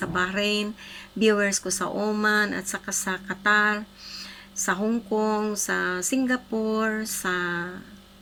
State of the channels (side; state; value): both; identical; correlation 1.00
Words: Bahrain, viewers ko sa Oman, at saka sa Qatar, sa Hong Kong, sa Singapore, sa